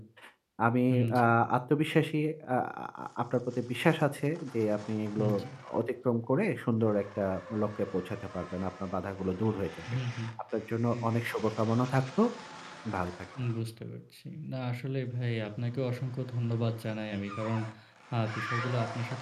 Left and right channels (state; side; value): identical; both; correlation 1.00